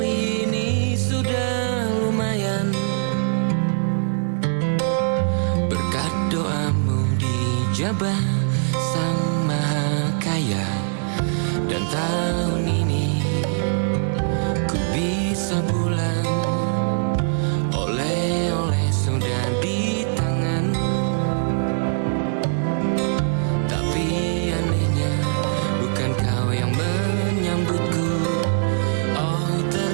ini sudah lumayan, berkat doamu dijabah Sang Maha Kaya. Dan tahun ini ku bisa pulang, oleh-oleh sudah di tangan. Tapi anehnya bukan kau yang menyambutku. Oh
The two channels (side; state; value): left; silent; digital silence